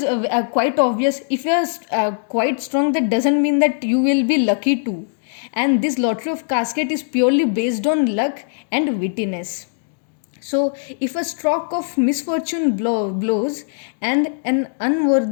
quite obvious. If you are quite strong, that doesn't mean that you will be lucky too. And this lottery of casket is purely based on luck and wittiness. So, if a stroke of misfortune blows and an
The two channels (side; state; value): right; silent; digital silence